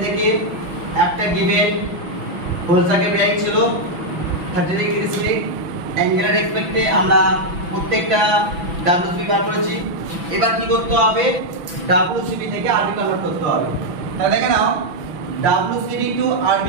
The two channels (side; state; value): left; late; 6.0 ms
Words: থেকে একটা গিভেন হোল সার্কেল বেয়ারিং ছিল 30 ডিগ্রি স্লিপ অ্যাঙ্গেলের রেসপেক্টে আমরা প্রত্যেকটা WCB বার করেছি। এবার কি করতে হবে? WCB থেকে RB কনভার্ট করতে হবে। তাহলে দেখে নাও, WCB to RB